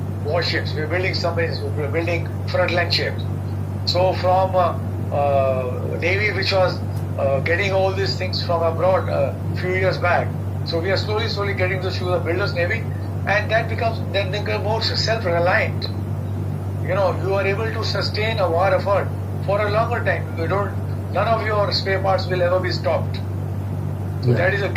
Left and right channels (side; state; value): both; identical; correlation 1.00